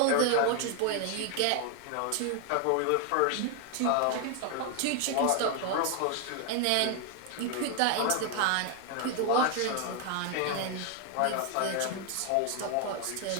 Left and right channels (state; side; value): different; both; correlation 0.01